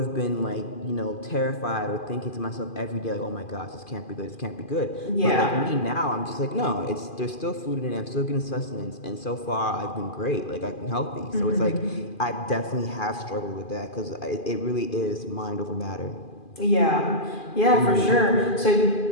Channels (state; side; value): late; right; 2.4 ms